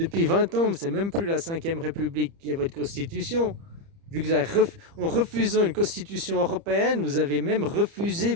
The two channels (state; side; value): late; left; 30 ms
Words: 20 ans, c'est même plus la 5e République qui est votre constitution. Vu que vous avez en refusant une constitution européenne, vous avez même refusé